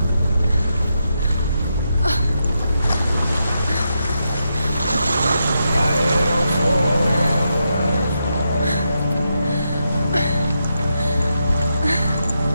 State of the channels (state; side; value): inverted; both; correlation -0.84